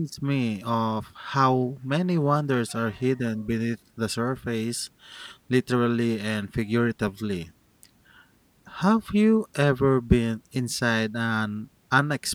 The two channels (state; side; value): identical; both; correlation 1.00